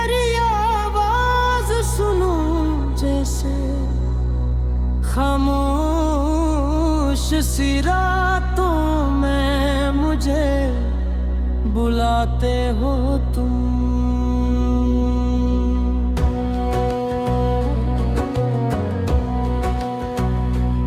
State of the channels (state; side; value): identical; both; correlation 1.00